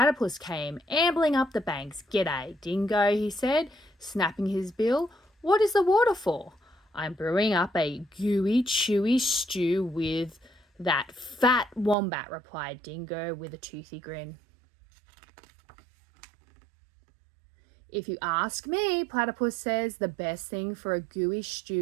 came ambling up the banks. "G'day, dingo," he said, snapping his bill. "What is the water for?" "I'm brewing up a gooey, chewy stew with that fat wombat," replied Dingo with a toothy grin. "If you ask me," Platypus says, "the best thing for a gooey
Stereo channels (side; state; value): left; drops out; at 12.0 s